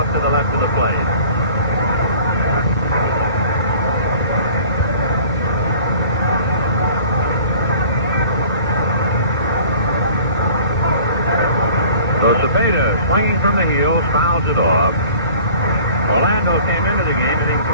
to the left of the plate. So Cepeda, swinging from the heels, fouls it off. Orlando came into the game hitting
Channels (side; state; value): both; inverted; correlation -0.48